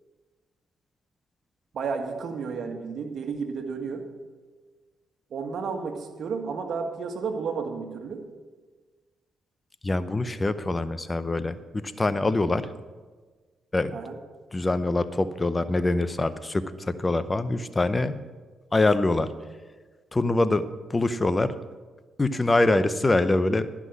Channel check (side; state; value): both; normal; correlation 0.92